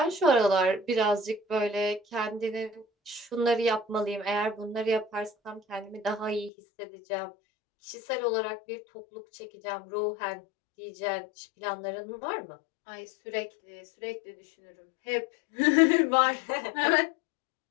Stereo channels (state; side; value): drops out; right; at 6.5 s